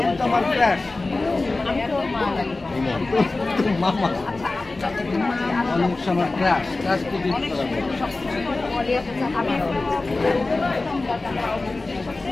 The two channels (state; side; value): quieter; right; 3.3 dB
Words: তোমার ক্র্যাশ আমি তো মামা অনেক সময় ক্র্যাশ তো দিতে পারবে